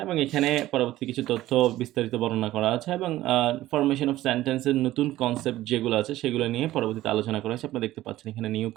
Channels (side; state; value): left; quieter; 15.4 dB